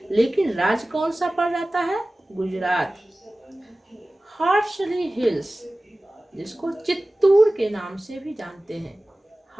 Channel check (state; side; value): normal; both; correlation 0.97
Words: लेकिन राज्य कौन सा पड़ जाता है? गुजरात। हार्सली हिल्स जिसको चित्तूर के नाम से भी जानते हैं,